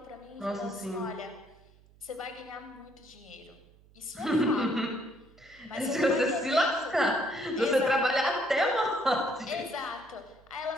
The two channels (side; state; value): right; noise; hum, 27 dB below the sound